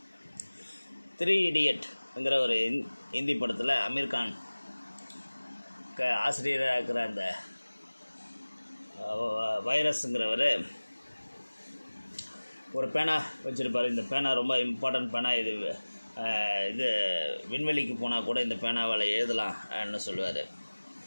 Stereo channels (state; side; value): inverted; both; correlation -1.00